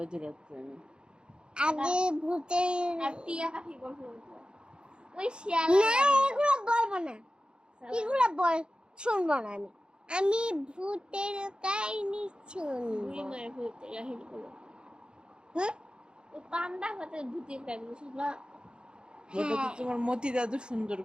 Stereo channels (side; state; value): left; late; 0.051 ms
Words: এত রাত্রে আমি? আগে ভূতের আর টিয়া পাখি বলবো। ওই শিয়াল না, এগুলো বলবো না, এগুলো শুনবো না আমি। আমি ভূতের কাহিনী শুনবো। মায়ের ভূতের কাহিনী বলো। হ্যাঁ, ওই পান্ডা হতে ভূতের কাহিনী শুনবা। ওটা তো তোমার মতি দাদু সুন্দর